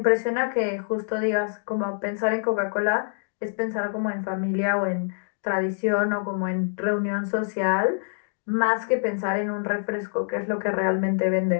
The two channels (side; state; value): right; silent; digital silence